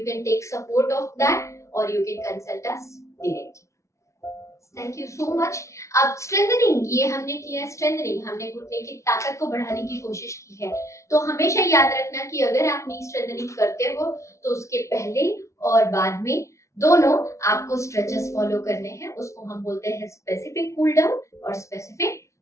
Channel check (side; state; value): right; late; 0.14 ms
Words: can take support of that और you can consult us directly. Thank you so much. अब स्ट्रेंथनिंग, ये हमने किया है स्ट्रेंथनिंग, हमने घुटने की ताकत को बढ़ाने की कोशिश की है। तो हमेशा याद रखना कि अगर आप नी स्ट्रेंथनिंग करते हो तो उसके पहले और बाद में दोनों आपको स्ट्रेचेस फॉलो करने हैं। उसको हम बोलते हैं स्पेसिफिक कूल डाउन और specific